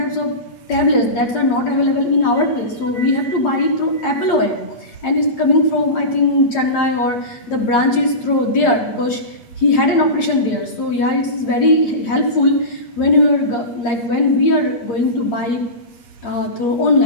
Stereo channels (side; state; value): right; late; 8.7 ms